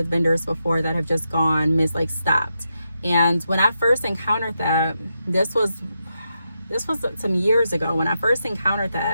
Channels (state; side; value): inverted; both; correlation -0.85